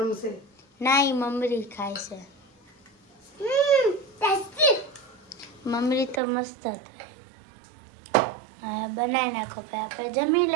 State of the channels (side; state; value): left; drops out; at 6.2 s